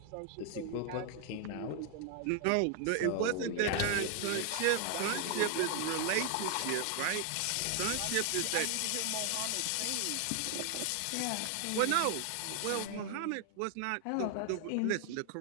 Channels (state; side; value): different; both; correlation 0.00